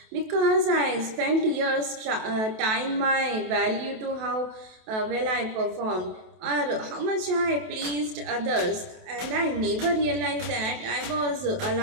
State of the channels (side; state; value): left; late; 28 ms